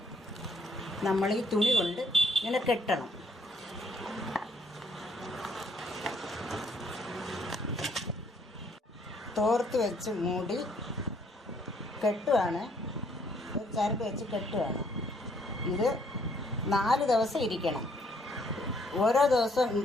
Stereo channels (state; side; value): normal; both; correlation 0.68